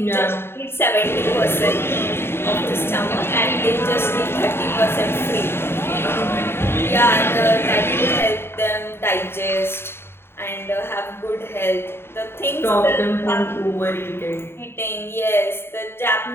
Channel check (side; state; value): right; late; 0.11 ms